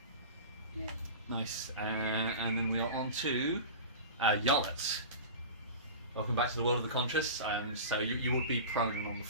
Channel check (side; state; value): both; inverted; correlation -0.32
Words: Yeah. Nice. And then we are on to Yarlet. Welcome back to the world of the conscious. So you would be prone and on the